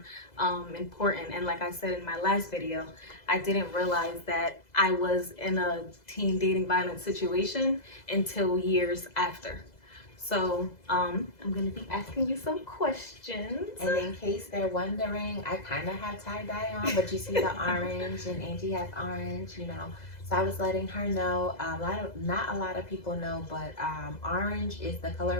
important. And like I said in my last video, I didn't realize that I was in a teen dating violence situation until years after. So I'm gonna be asking you some questions. And in case they're wondering, I kind of have tie-dye on, but you see the orange, and Angie has orange, you know. So I was letting her know, not a lot of people know, but orange is the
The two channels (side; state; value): right; late; 2.0 ms